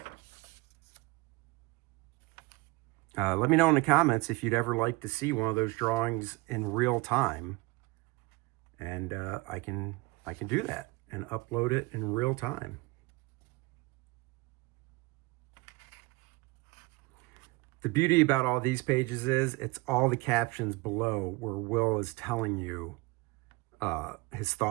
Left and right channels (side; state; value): left; quieter; 23.4 dB